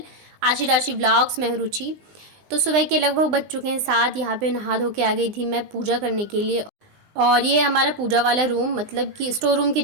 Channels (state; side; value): late; left; 20 ms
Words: Aashi Rashi vlogs. मैं हूं रुचि। तो सुबह के लगभग बज चुके हैं 7। यहाँ पे नहा धो के आ गई थी मैं पूजा करने के लिए। और ये हमारा पूजा वाला रूम मतलब कि स्टोर रूम के